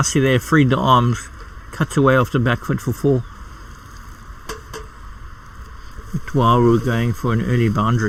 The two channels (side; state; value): both; identical; correlation 1.00